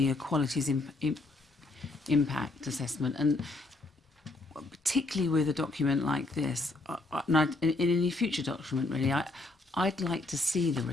equalities impact assessment, and particularly with a document like this, and in any future document, really, I'd like to see the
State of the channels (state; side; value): quieter; right; 3.0 dB